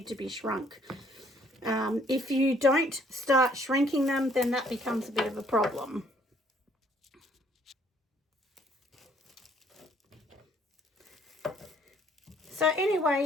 to be shrunk. If you don't start shrinking them, then that becomes a bit of a problem. So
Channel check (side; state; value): both; normal; correlation 0.63